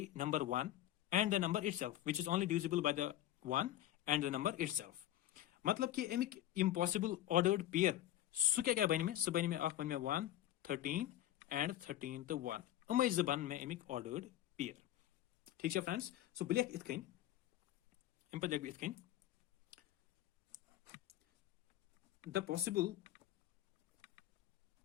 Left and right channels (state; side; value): quieter; right; 13.4 dB